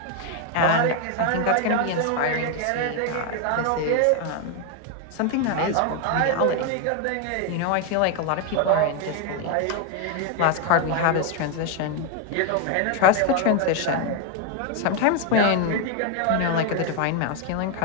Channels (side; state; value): both; different; correlation 0.01